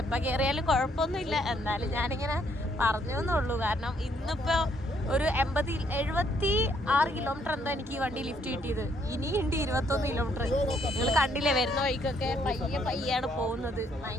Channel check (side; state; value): both; normal; correlation 0.69